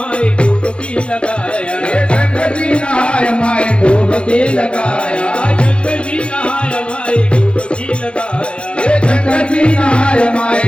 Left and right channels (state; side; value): late; right; 0.057 ms